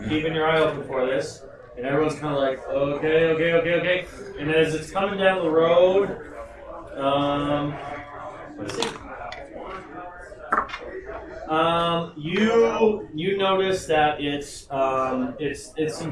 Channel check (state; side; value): identical; both; correlation 1.00